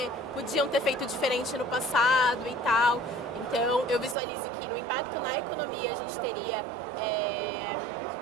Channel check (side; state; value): left; drops out; at 4.2 s